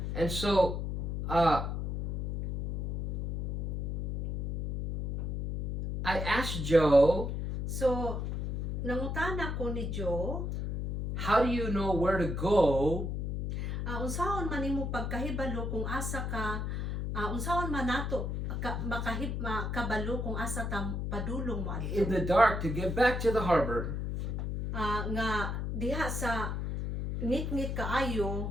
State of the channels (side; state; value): left; noise; hum, 2 dB below the sound